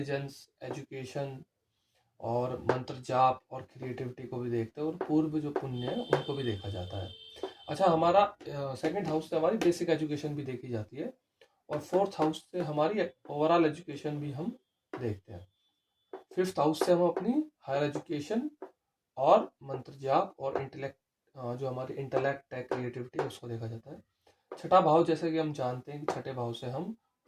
एजुकेशन और मंत्र जाप और क्रिएटिविटी को भी देखते हैं, और पूर्व जो पुण्य है उनको भी देखा जाता है। अच्छा, हमारा सेकंड हाउस से हमारी बेसिक एजुकेशन भी देखी जाती है, और फोर्थ हाउस से हमारी ओवरऑल एजुकेशन भी हम देखते हैं। फिफ्थ हाउस से हम अपनी हायर एजुकेशन और मंत्र जाप और इंटेलेक्ट, जो हमारी इंटेलेक्ट है, क्रिएटिविटी, उसको देखा जाता है। छठा भाव, जैसे कि हम जानते हैं कि छठे भाव से हम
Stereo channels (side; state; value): both; identical; correlation 1.00